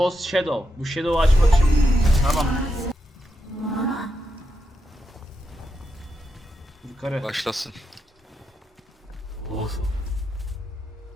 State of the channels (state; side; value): normal; both; correlation 0.85